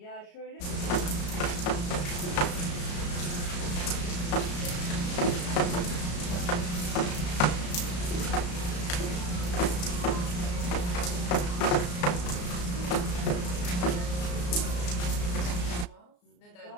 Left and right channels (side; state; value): right; late; 34 ms